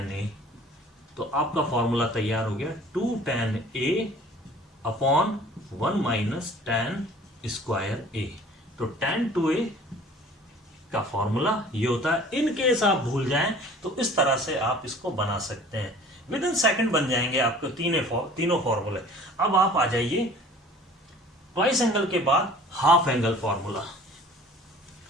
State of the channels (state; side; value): normal; both; correlation 0.48